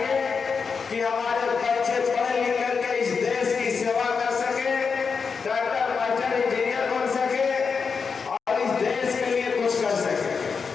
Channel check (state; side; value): quieter; right; 5.5 dB